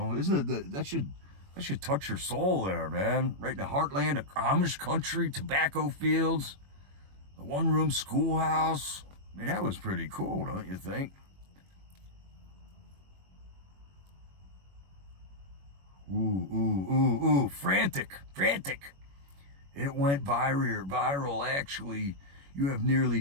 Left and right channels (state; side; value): late; left; 21 ms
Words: Isn't it that should touch your soul there, man? Right in the heartland of Amish country, tobacco fields, the one-room schoolhouse. I mean, that was pretty cool, don't you think? Ooh, frantic. It went viral, actually. You have